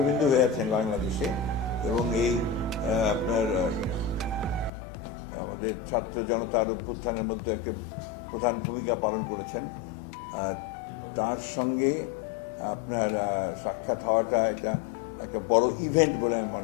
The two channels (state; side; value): drops out; right; at 4.7 s